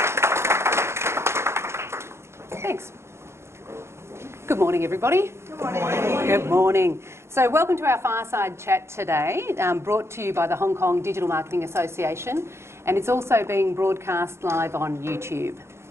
Thanks. Good morning, everybody. Good morning. Good morning. So welcome to our Fireside Chat today, brought to you by the Hong Kong Digital Marketing Association, and it's also being broadcast live on YouTube.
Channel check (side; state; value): left; late; 0.13 ms